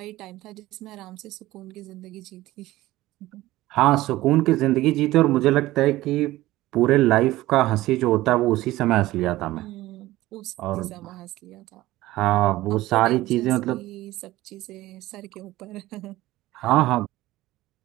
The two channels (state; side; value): quieter; left; 17.0 dB